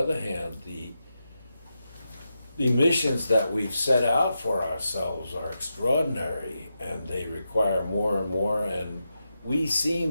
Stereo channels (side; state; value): both; inverted; correlation -0.88